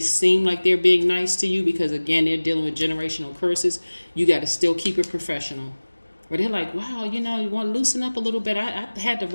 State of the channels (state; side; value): inverted; both; correlation -1.00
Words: like they're being nice to you because, again, they're dealing with generational curses. You got to still keep it professional. Where they're like, wow, you want to loosen up a little bit. I had the